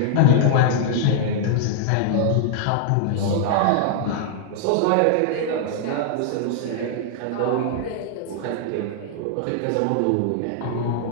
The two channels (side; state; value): both; different; correlation 0.00